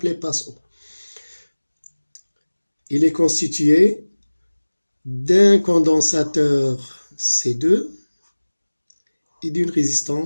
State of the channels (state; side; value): inverted; both; correlation -1.00